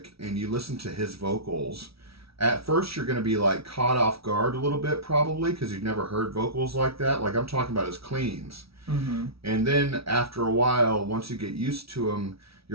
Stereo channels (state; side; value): late; left; 0.76 ms